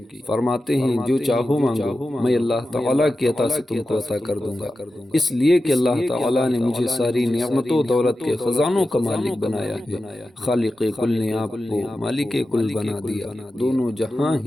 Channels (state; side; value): normal; both; correlation 0.93